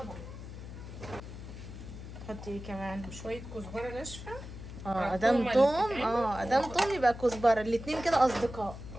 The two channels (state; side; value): noise; left; hum, 11 dB below the sound